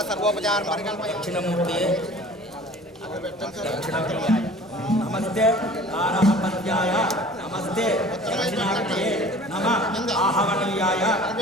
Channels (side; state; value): both; normal; correlation 0.46